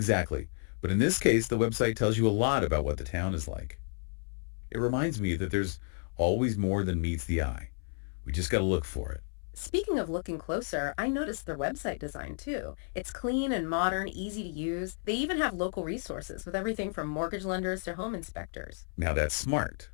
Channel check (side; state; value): right; silent; 57 dB below the other